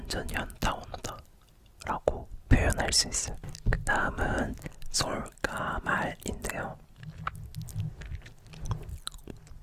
연타 온다 라고 표현할 수 있어요. 그 다음은 솔까말인데요.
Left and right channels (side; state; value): both; identical; correlation 1.00